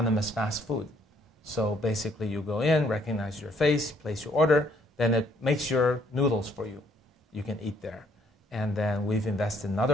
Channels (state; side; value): normal; both; correlation 0.66